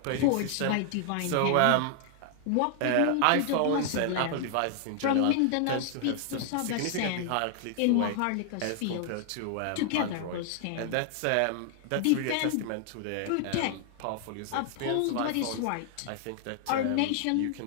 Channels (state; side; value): different; both; correlation 0.00